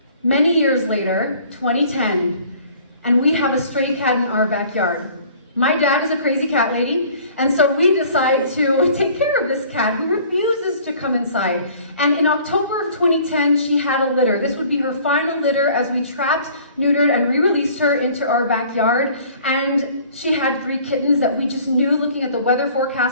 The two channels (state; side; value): inverted; both; correlation -0.52